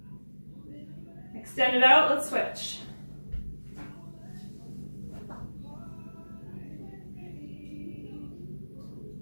Extend it out, let's switch.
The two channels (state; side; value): inverted; both; correlation -1.00